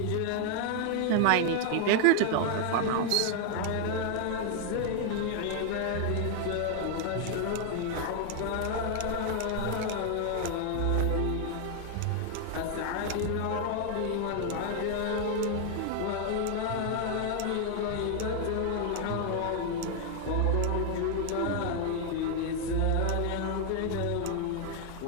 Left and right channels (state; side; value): different; both; correlation 0.00